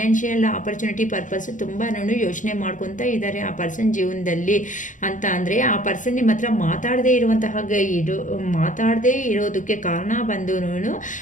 ಆಪರ್ಚುನಿಟಿ ಪರ್ಪಸ್ ತುಂಬಾ ಯೋಚನೆ ಮಾಡ್ಕೊತಾ ಇದ್ದಾರೆ ಆ ಪರ್ಸನ್ ಜೀವನದಲ್ಲಿ ಅಂತ ಅಂದರೆ ಆ ಪರ್ಸನ್ ನಿಮ್ಮ ಹತ್ರ ಮಾತಾಡದೇ ಇರುವಂತಹ ಮಾತಾಡದೇ ಇರೋದಕ್ಕೆ ಕಾರಣ ಬಂದು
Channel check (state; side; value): late; right; 0.37 ms